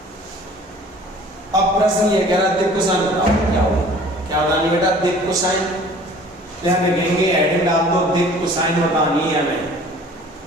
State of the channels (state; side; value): normal; both; correlation 0.49